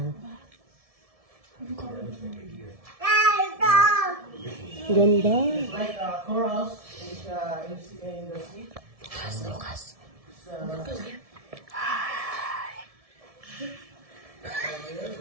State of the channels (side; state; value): left; late; 1.7 ms